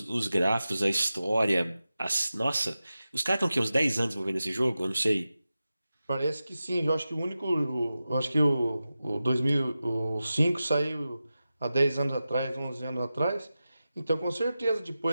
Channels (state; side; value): inverted; both; correlation -0.93